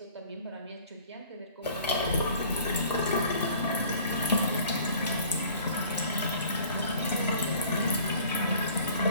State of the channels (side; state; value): both; inverted; correlation -0.51